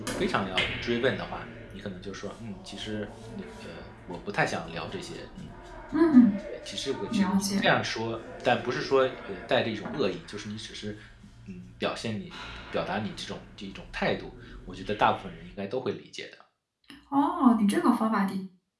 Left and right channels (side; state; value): both; identical; correlation 1.00